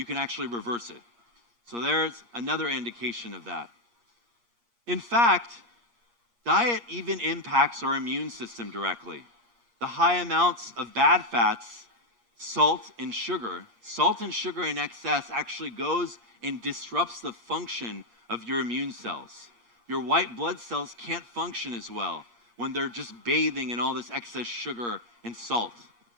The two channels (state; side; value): late; left; 8.5 ms